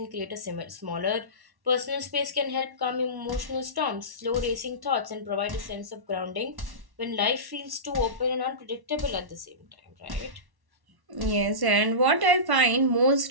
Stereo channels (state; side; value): late; left; 1.1 ms